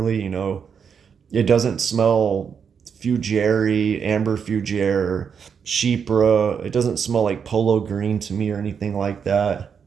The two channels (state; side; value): quieter; left; 6.8 dB